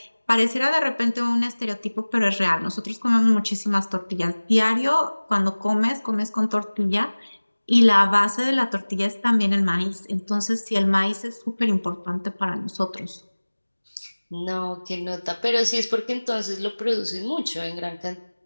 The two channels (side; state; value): both; inverted; correlation -1.00